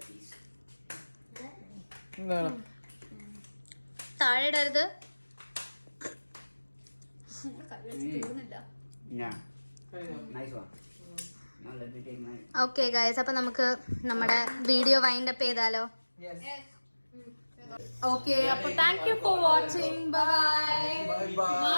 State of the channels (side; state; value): both; inverted; correlation -1.00